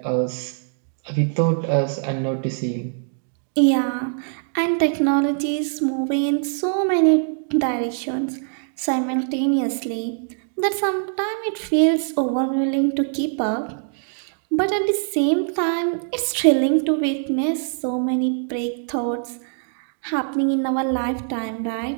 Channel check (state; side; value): silent; left; digital silence